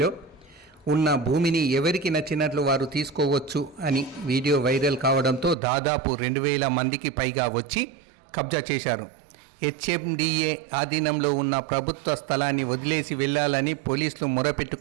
ఉన్న భూమిని ఎవరికి నచ్చినట్లు వారు తీసుకోవచ్చు అని వీడియో వైరల్ కావడంతో దాదాపు 2000 మందికి పైగా వచ్చి కబ్జా చేశారు. హెచ్ఎండిఏ ఆధీనంలో ఉన్న ప్రభుత్వ స్థలాన్ని వదిలేసి వెళ్లాలని పోలీసులు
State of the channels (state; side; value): drops out; left; at 5.6 s